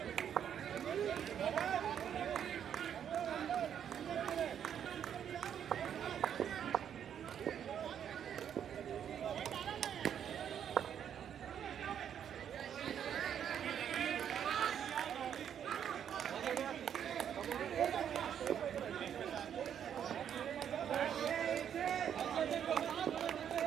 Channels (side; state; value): left; quieter; 8.9 dB